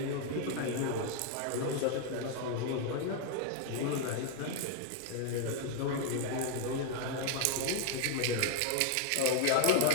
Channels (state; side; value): different; both; correlation 0.00